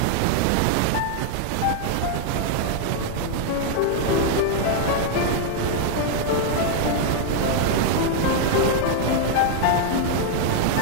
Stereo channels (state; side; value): different; both; correlation -0.01